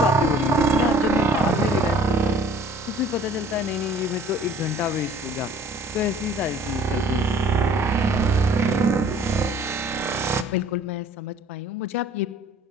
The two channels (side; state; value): both; normal; correlation 0.53